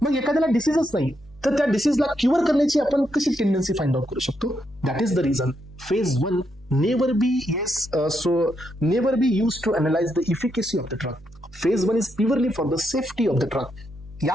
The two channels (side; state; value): left; noise; hum, 22 dB below the sound